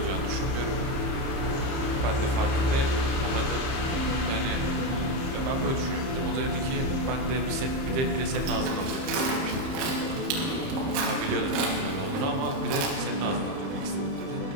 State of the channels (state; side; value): late; left; 30 ms